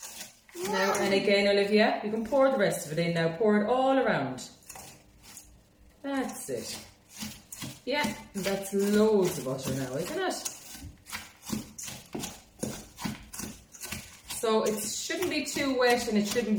Now, and again, Olivia, you can pour the rest of it in now. Pour it all around. That's it. Yeah, that's loads of butter now, isn't it? So it shouldn't be too wet and it shouldn't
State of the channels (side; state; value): both; identical; correlation 1.00